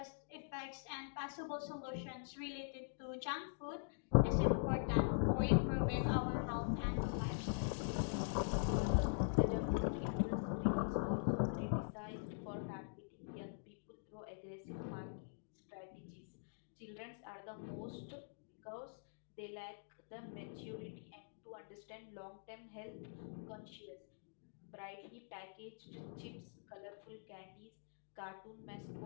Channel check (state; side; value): silent; right; digital silence